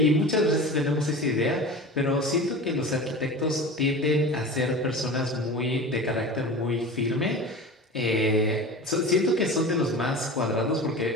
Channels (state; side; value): normal; both; correlation 0.33